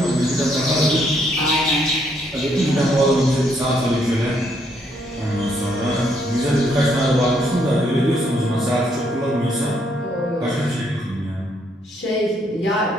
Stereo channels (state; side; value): normal; both; correlation 0.72